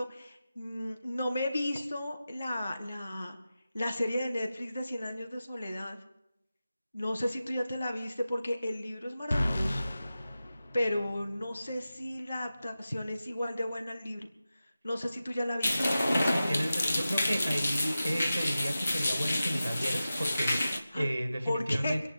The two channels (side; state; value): both; inverted; correlation -0.94